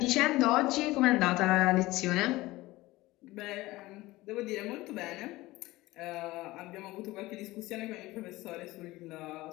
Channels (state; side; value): quieter; right; 19.0 dB